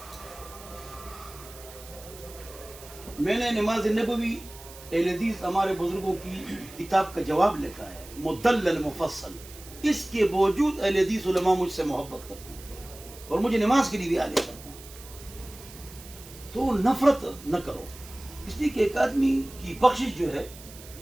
میں نے نماز نبوی اہل حدیث ہمارے بزرگوں کی کتاب کا جواب لکھا ہے، مدلل مفصل، اس کے باوجود اہل حدیث علماء مجھ سے محبت کرتے ہیں اور مجھے نماز کے لیے بھی آگے کرتے ہیں۔ تو نفرت نہ کرو، اس لیے کہ ایک آدمی کی بخشش جو ہے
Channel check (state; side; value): noise; right; hiss, 18 dB below the sound